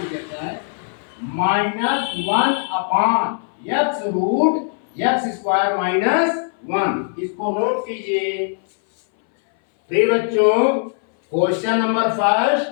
देता है -1 upon x root x square -1। इसको नोट कीजिए। प्रिय बच्चों, question number first,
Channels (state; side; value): silent; right; 61 dB below the other